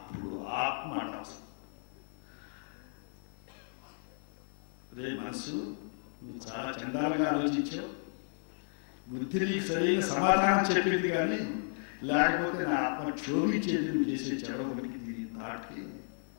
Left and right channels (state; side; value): silent; right; 55 dB below the other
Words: ఆత్మ వస్తుంది. రే మనసు, నువ్వు చాలా చండాలంగా ఆలోచించావు, బుద్ధి నీకు సరైన సమాధానం చెప్పింది కానీ లేకపోతే నా ఆత్మ క్షోభించేది నువ్వు చేసే చెడవనికి దీని నాటికి